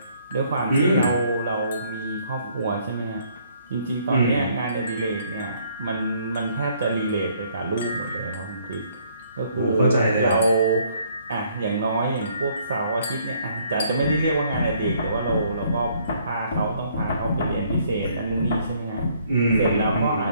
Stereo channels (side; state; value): both; inverted; correlation -0.65